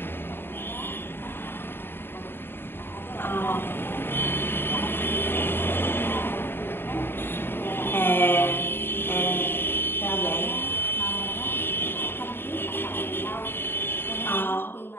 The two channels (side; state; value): right; late; 0.11 ms